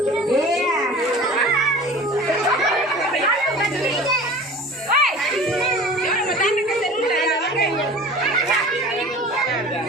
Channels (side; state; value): both; normal; correlation 0.41